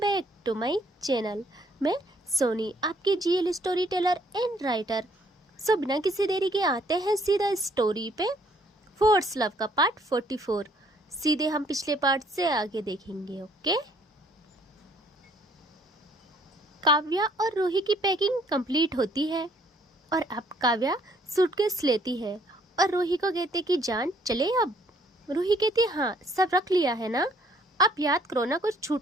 to my channel. मैं सोनी, आपकी GL story teller and writer. So बिना किसी देरी के आते हैं सीधा स्टोरी पे। फोर्स लव का पार्ट 44 सीधे हम पिछले पार्ट से आगे देखेंगे। ओके। काव्या और रूही की पैकिंग कंप्लीट होती है और अब काव्या सूटकेस लेती है और रूही को कहते कि जान चले अब। रूही कहती है हाँ सब रख लिया है ना, अब याद करो ना कुछ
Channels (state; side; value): normal; both; correlation 0.63